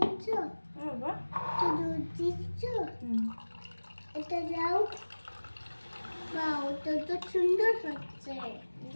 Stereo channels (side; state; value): both; inverted; correlation -1.00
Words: বাবা একটু দুধ দিচ্ছ? এটা দাও। বা ওটা তো সুন্দর হচ্ছে।